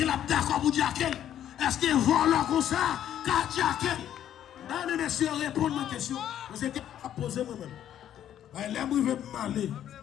a d'accord pour dire qu'elle? Est-ce qu'il vole comme ça? Car dire qu'elle? Non, monsieur, répondre à ma question. Vous êtes à poser moi-même. L'aime veut m'aller.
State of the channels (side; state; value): right; quieter; 10.7 dB